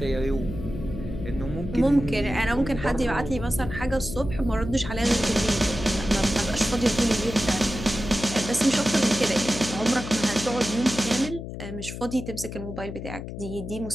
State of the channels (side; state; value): left; noise; hum, 9 dB below the sound